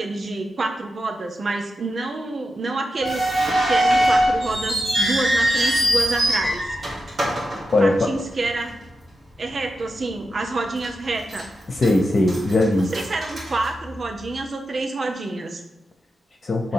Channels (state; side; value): normal; both; correlation 0.89